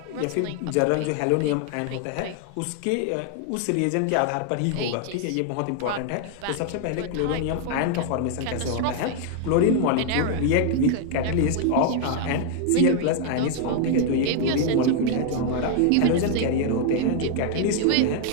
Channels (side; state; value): both; different; correlation 0.00